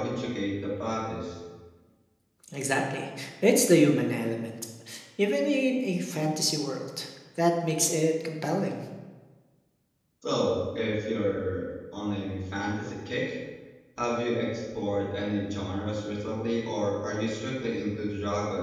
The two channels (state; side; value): identical; both; correlation 1.00